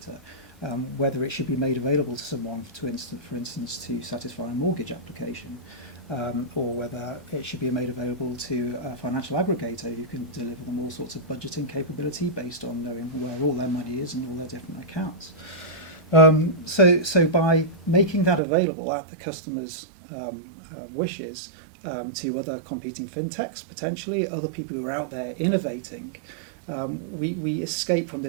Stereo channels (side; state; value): left; drops out; at 18.4 s